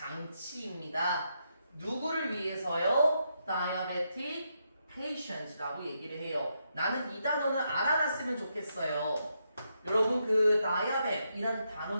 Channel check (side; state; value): both; inverted; correlation -0.80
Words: 누구를 위해서요? Diabetic patient라고 얘기를 해요. 나는 이 단어는 알아놨으면 좋겠어요. 여러분 그 diabet이라는 단어